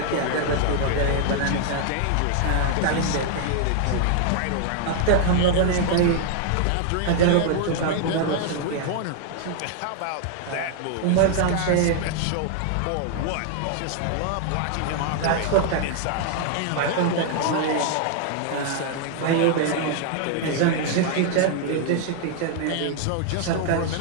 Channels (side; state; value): both; different; correlation 0.00